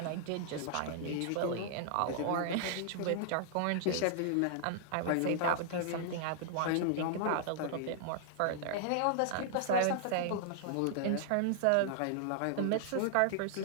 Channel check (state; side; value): different; both; correlation -0.01